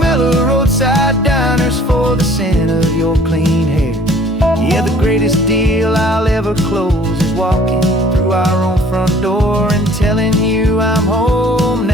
of roadside diners for the scent of your clean hair. Yeah, the greatest deal I'll ever close is walking through our own front door and telling you I'm home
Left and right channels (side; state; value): both; normal; correlation 0.54